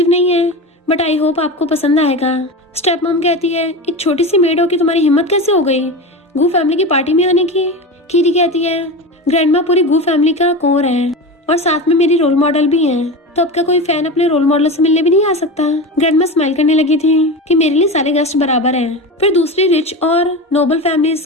नहीं है बट आई होप आपको पसंद आएगा। स्टेप मॉम कहती है एक छोटी सी मेड हो कि तुम्हारी हिम्मत कैसे हो गई गू फैमिली की पार्टी में आने की। कीरी कहती है ग्रैंडमा पूरी गू फैमिली का कोर है और साथ में मेरी रोल मॉडल भी है, तो अब का कोई फैन अपने रोल मॉडल से मिलने भी नहीं आ सकता। ग्रैंडमा स्माइल करने लगी थी कि मेरे लिए सारे गेस्ट बराबर हैं। फिर दूसरी रिच और नोबल फैमिलीज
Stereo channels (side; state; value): both; normal; correlation 0.25